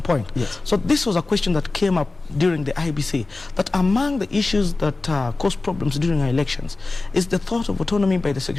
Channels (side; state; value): right; quieter; 3.4 dB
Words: point. So this was a question that came up during the IEBC, that among the issues that cause problems during our elections is the thought of autonomy by the